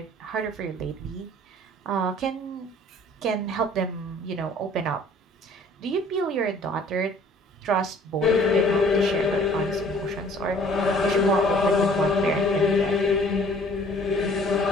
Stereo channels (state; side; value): normal; both; correlation 0.54